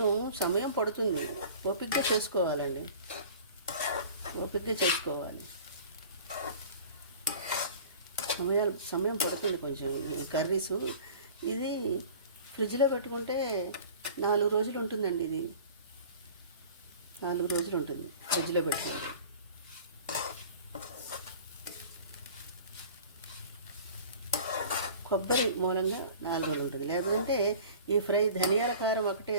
సమయం పడుతుంది, ఓపికగా చేసుకోవాలండి, ఓపికగా చేసుకోవాలి. సమయం పడుతుంది కొంచెం ఈ కర్రీసు. ఇది ఫ్రిడ్జ్లో పెట్టుకుంటే 4 రోజులు ఉంటుందండి. ఇది 4 రోజులు ఉంటుంది ఫ్రిడ్జ్లో పెట్టుకుంటే. కొబ్బరి మూలంగా 4 రోజులు ఉంటుంది. లేదంటే ఈ ఫ్రై ధనియాల కారం ఒకటే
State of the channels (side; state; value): both; inverted; correlation -0.43